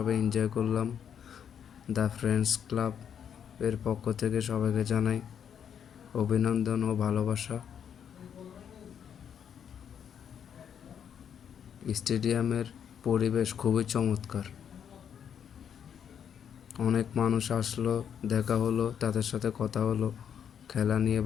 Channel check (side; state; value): right; quieter; 8.3 dB